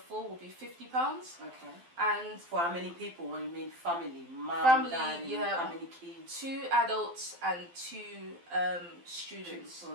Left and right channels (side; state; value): left; late; 12 ms